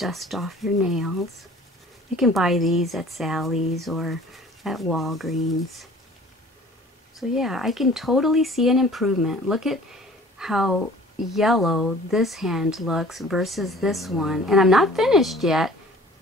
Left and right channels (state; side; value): normal; both; correlation 0.48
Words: off your nails. You can buy these at Sally's or at Walgreens. So yeah, I can totally see an improvement. Look at how yellow this hand looks versus this one, and I'm not finished yet,